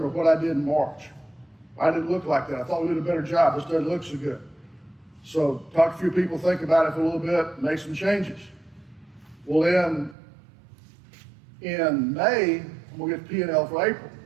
what I did in March. Why did it look like that? I thought we did a better job. This doesn't look so good. So talk to a few people, think about it for a little bit, make some changes. Well, then in May, we'll get P&L for April.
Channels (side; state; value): left; drops out; at 10.2 s